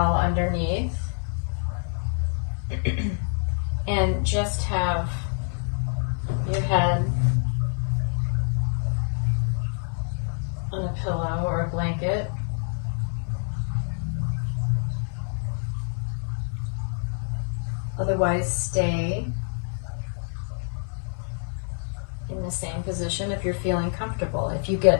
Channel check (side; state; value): right; silent; 57 dB below the other